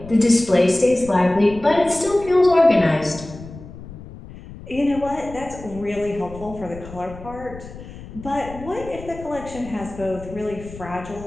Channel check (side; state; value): left; noise; rumble, 15 dB below the sound